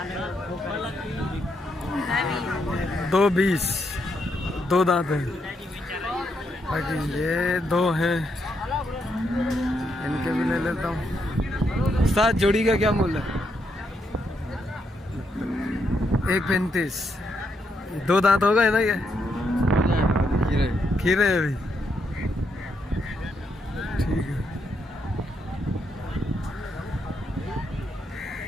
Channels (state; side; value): normal; both; correlation 0.79